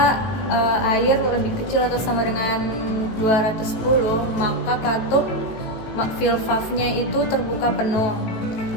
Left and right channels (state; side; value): late; right; 18 ms